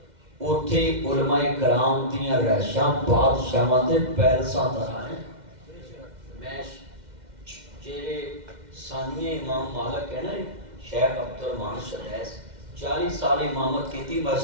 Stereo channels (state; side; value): late; left; 2.1 ms